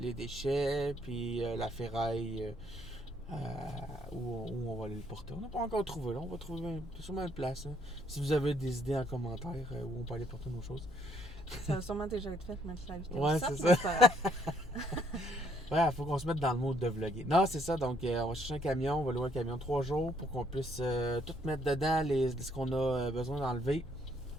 déchets, puis la ferraille où on va aller le porter. On n'a pas encore trouvé, là. On va trouver sûrement une place. Hein. Si vous avez des idées en commentaire où on peut aller porter nos choses. Ça va sûrement déjà être fait, mettre la vidéo. Ouais, Ça, c'est mais ça. c'est pas grave. Ouais, faut qu'on se mette dans le mode de vlogger. Non, c'est ça. Donc, on va chercher un camion. On va louer un camion 3 jours pour qu'on puisse tout mettre dedans ce qu'on a besoin d'enlever.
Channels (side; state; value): both; normal; correlation 0.68